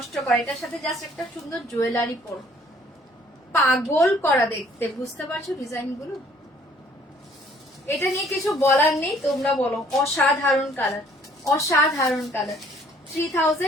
করে, এটার সাথে জাস্ট একটা সুন্দর জুয়েলারি পরো, পাগল করা দেখতে। বুঝতে পারছো ডিজাইন গুলো? এটা নিয়ে কিছু বলার নেই, তোমরা বলো। অসাধারণ কালার, অসাধারণ কালার,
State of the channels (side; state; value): both; normal; correlation 0.59